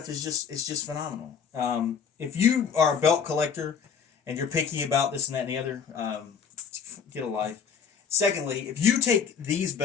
is just phenomenal. If you are a belt collector and you're picky about this and that and the other, get a life. Secondly, if you take these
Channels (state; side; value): quieter; right; 6.8 dB